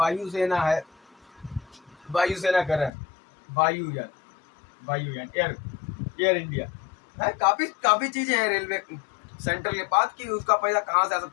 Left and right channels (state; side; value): drops out; right; at 2.9 s